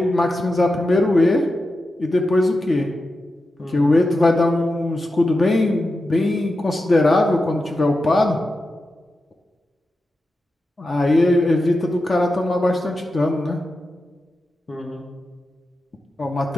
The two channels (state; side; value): normal; both; correlation 0.90